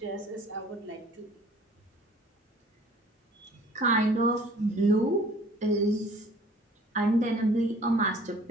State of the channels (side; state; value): both; normal; correlation 0.52